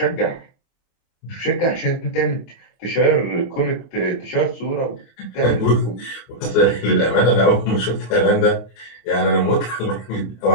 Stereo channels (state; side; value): late; right; 27 ms